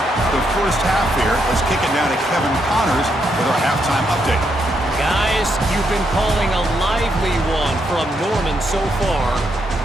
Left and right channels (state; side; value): normal; both; correlation 0.78